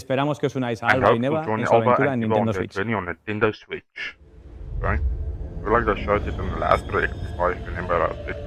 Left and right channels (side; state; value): both; identical; correlation 1.00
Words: que os unáis a Alba y Neva en su aventura en Nintendo Switch. I feel like I showed it in the last direct, if I remember the